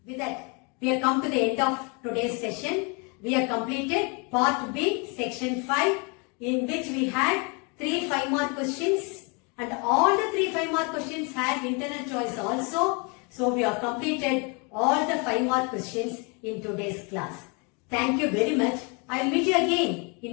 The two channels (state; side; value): quieter; right; 32.7 dB